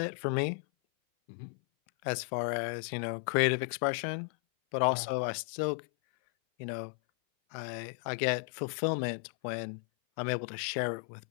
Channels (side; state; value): right; silent; 55 dB below the other